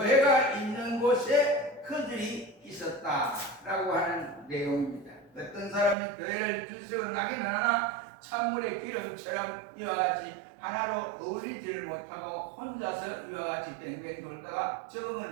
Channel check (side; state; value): left; drops out; at 6.0 s